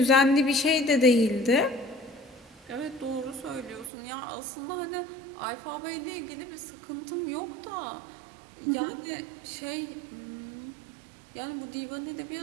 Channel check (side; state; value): left; drops out; at 3.9 s